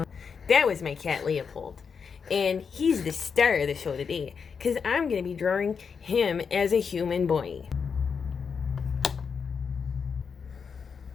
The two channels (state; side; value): quieter; right; 6.1 dB